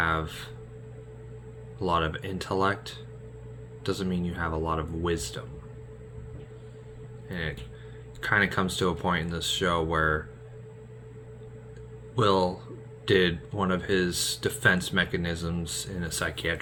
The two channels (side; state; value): both; identical; correlation 1.00